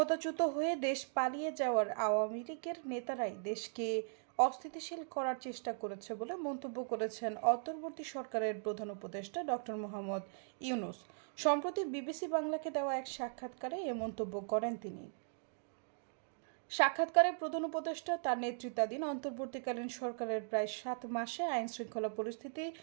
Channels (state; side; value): silent; left; digital silence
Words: হয়ে দেশ পালিয়ে যাওয়ার আওয়ামী লীগের নেতারাই দেশকে অস্থিতিশীল করার চেষ্টা করেছে বলে মন্তব্য করেছেন অন্তর্বর্তী সরকারের প্রধান উপদেষ্টা ডক্টর মোহাম্মদ ইউনূস। সম্প্রতি বিবিসি বাংলাকে দেওয়া এক সাক্ষাৎকারে এ মন্তব্য করেন তিনি। সাক্ষাৎকারে প্রধান উপদেষ্টা তার নেতৃত্বাধীন অন্তর্বর্তীকালীন সরকারের প্রায় 7 মাসে আইন শৃঙ্খলা পরিস্থিতি,